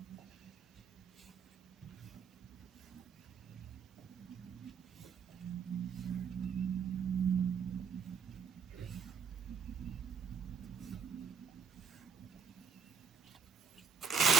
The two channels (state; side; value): quieter; left; 6.3 dB